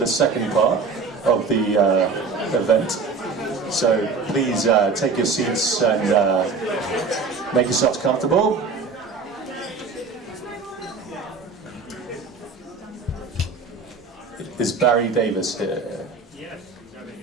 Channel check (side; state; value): left; quieter; 4.6 dB